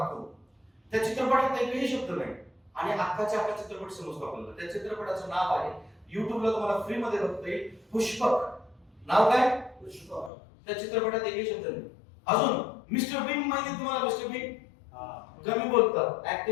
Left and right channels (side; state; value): right; drops out; at 10.3 s